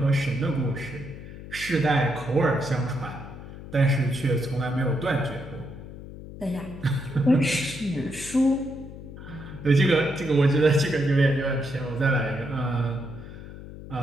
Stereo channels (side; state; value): left; noise; hum, 13 dB below the sound